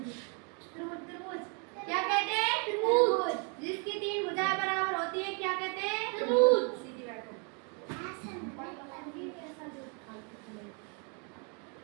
क्या कहते हैं? त्रिभुज। जिसकी 3 भुजाएं बराबर होती है क्या कहते हैं? त्रिभुज। सीधी बैठो।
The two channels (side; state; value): left; quieter; 36.4 dB